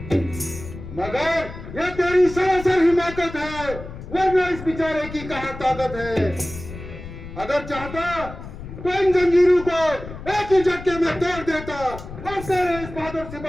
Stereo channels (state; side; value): noise; left; rumble, 12 dB below the sound